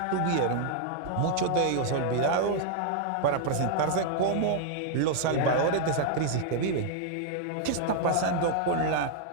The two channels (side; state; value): both; different; correlation -0.01